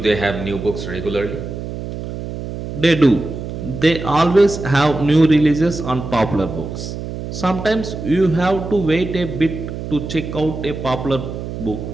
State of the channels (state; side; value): noise; right; hum, 8 dB below the sound